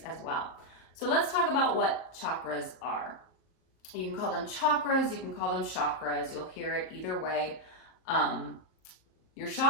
as well. So let's talk about what chakras are. You can call them chakras, you can call them chakras, you'll hear it either way. Your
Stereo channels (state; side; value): late; right; 38 ms